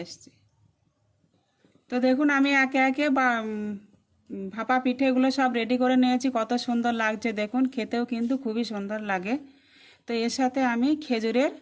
আসছি। তো দেখুন আমি একে একে ভাপা পিঠেগুলো সব রেডি করে নিয়েছি। কত সুন্দর লাগছে দেখুন, খেতেও কিন্তু খুবই সুন্দর লাগে। তো এর সাথে আমি খেজুরের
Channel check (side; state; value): both; identical; correlation 1.00